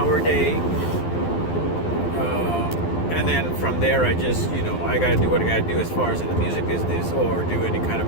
day. And then from there, I just, I got to do what I got to do as far as in the music business or do any kind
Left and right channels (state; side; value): late; right; 12 ms